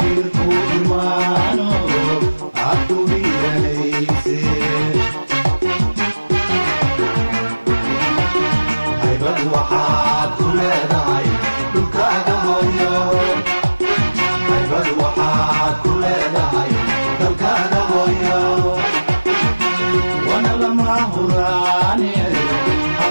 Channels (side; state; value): both; inverted; correlation -1.00